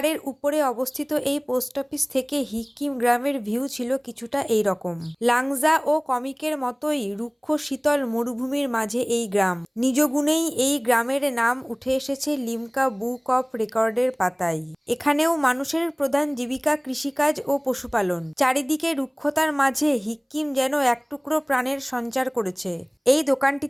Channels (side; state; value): both; identical; correlation 1.00